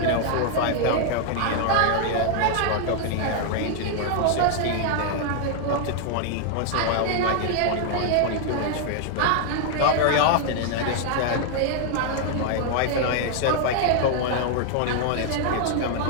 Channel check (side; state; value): both; different; correlation 0.00